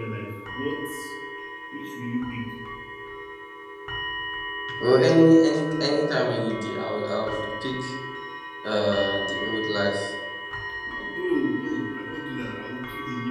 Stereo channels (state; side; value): identical; both; correlation 1.00